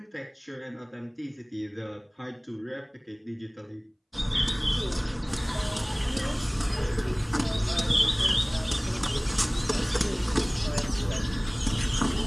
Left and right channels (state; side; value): identical; both; correlation 1.00